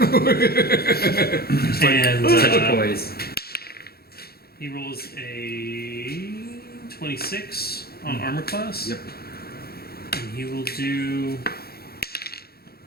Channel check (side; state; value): right; late; 0.45 ms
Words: And Such a poise. he rolls a 26 on armor class. Yep. And he will do